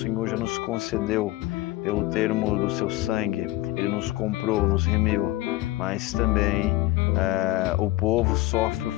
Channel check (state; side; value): quieter; right; 17.8 dB